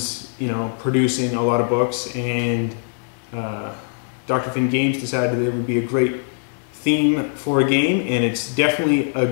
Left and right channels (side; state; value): right; silent; digital silence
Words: you know, producing a lot of books. And Dr. Finn Games decided that it would be a great theme for a game, and it's definitely a